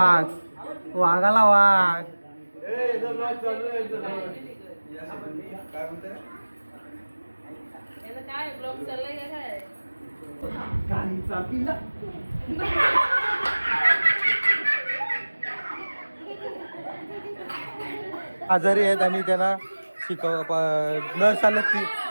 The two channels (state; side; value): inverted; both; correlation -1.00